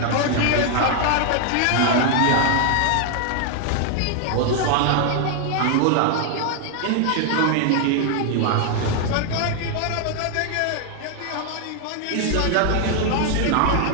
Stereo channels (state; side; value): different; both; correlation 0.00